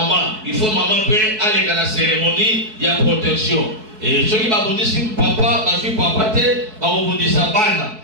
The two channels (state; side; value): late; left; 4.7 ms